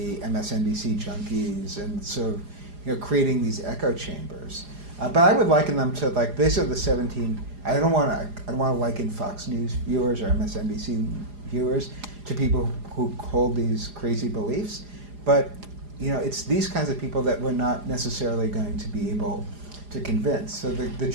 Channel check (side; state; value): left; late; 4.9 ms